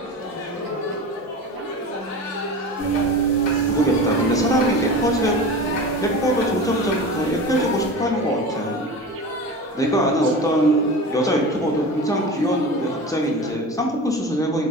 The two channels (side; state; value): both; normal; correlation 0.32